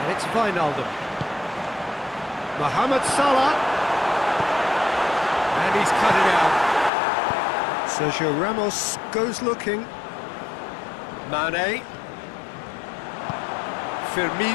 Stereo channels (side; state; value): right; drops out; at 6.9 s